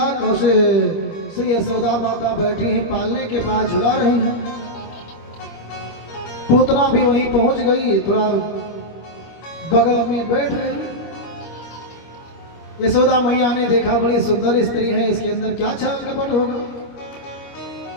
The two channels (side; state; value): right; late; 25 ms